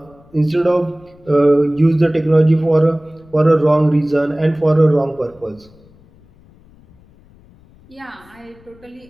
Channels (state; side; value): noise; left; rumble, 28 dB below the sound